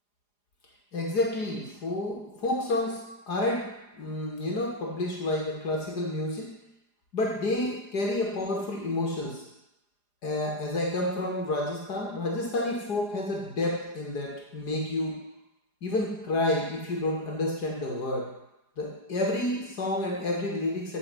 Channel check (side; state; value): right; late; 4.9 ms